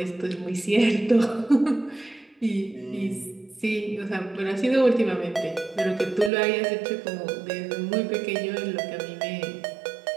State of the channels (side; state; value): left; drops out; at 6.3 s